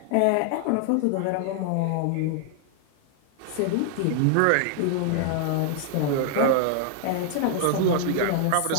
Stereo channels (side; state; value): both; different; correlation -0.01